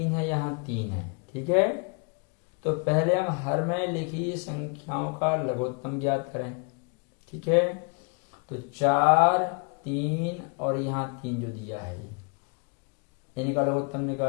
है, यहाँ 3 है। ठीक है, तो पहले हम हर में लिखी संख्याओं का लघुत्तम ज्ञात करें। ठीक है, तो 4, 3 और यहाँ 3 जो दिया है इनका लघुत्तम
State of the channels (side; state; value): right; quieter; 34.7 dB